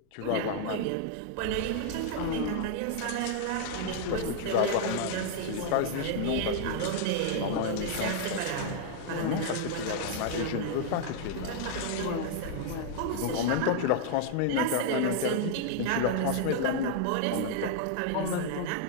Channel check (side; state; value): both; different; correlation -0.01